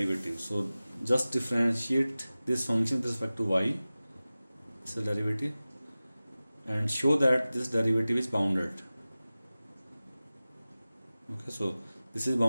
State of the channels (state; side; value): inverted; both; correlation -0.97